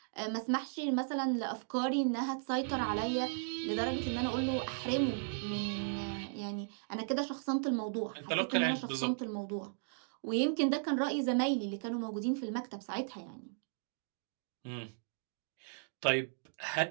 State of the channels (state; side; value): silent; left; digital silence